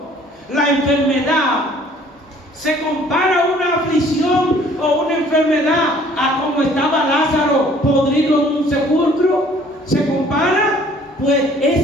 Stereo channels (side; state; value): both; normal; correlation 0.56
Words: la enfermedad, ¿Se compara una aflicción o una enfermedad a como estaba Lázaro podrido en un sepulcro? ¿Se compara? Pues